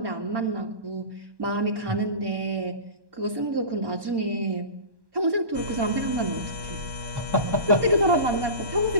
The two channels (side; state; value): left; late; 1.1 ms